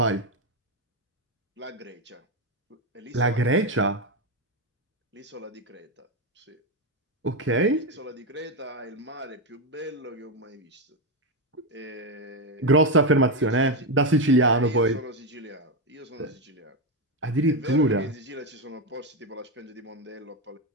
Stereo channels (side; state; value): both; normal; correlation 0.08